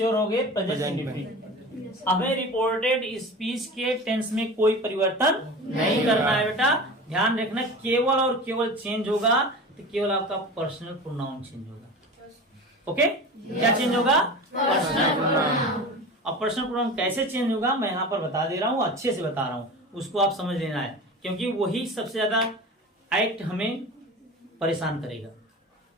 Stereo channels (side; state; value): both; normal; correlation 0.33